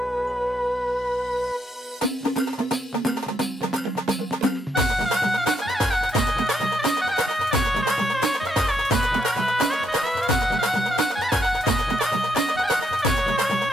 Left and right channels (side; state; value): both; normal; correlation 0.77